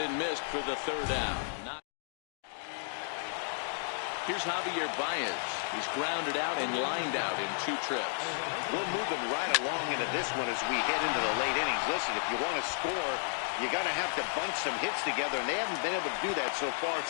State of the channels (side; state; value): right; silent; digital silence